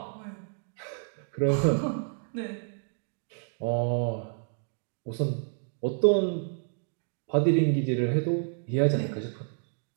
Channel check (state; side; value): silent; left; 58 dB below the other